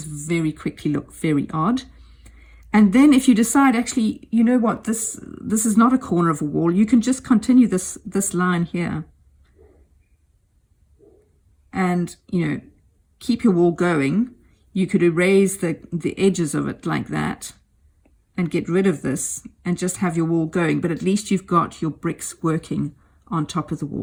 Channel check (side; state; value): both; identical; correlation 1.00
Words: very quickly look very odd. And then if you decide, actually, you know what, this is not a corner of a wall, you can just continue this line here. And, you know, keep your wall going. You could erase the edges of it like that and get rid of this and just have your wall going. But at least you've got your bricks working on top of the